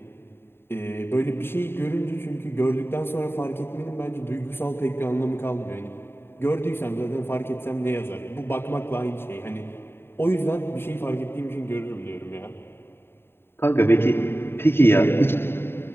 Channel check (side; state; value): right; late; 0.11 ms